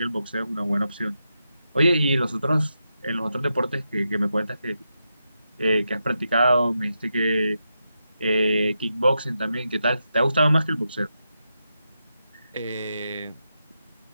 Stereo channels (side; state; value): both; inverted; correlation -0.87